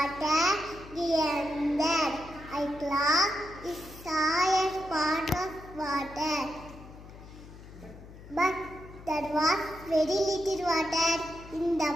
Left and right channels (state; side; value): noise; left; hum, 17 dB below the sound